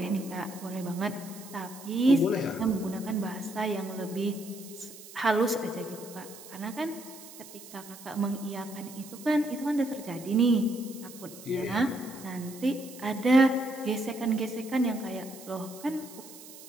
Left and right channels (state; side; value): noise; right; hiss, 16 dB below the sound